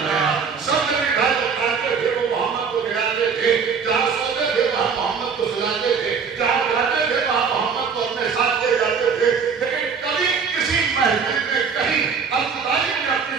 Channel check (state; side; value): quieter; left; 6.0 dB